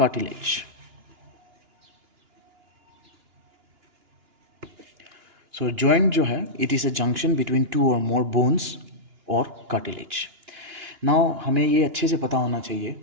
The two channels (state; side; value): late; left; 2.9 ms